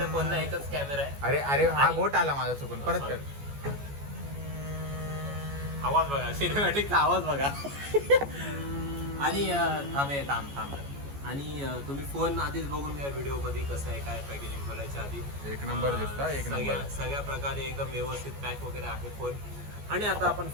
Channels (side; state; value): left; late; 14 ms